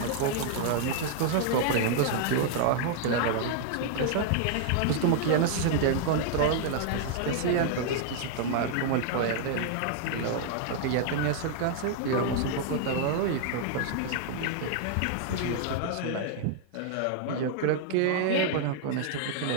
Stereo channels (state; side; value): different; both; correlation 0.00